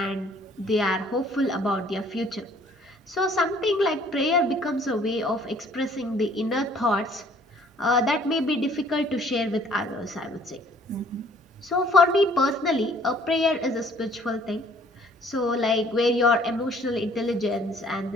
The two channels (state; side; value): normal; both; correlation 0.58